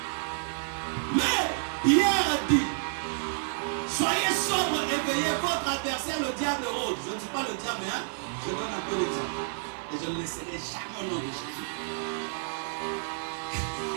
Mais Pierre a dit, soyez sobre et veillez, votre adversaire, le diable rôde. Je ne dis pas le diable, hein? Je donne un peu l'exemple. Et je ne laisserai jamais au nom de Jésus.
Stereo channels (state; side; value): silent; left; 58 dB below the other